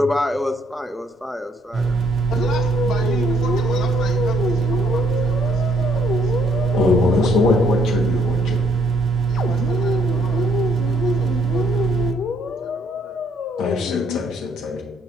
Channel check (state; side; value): normal; both; correlation 0.67